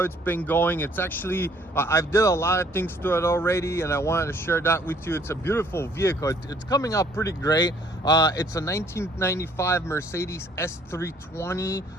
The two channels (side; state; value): both; normal; correlation 0.61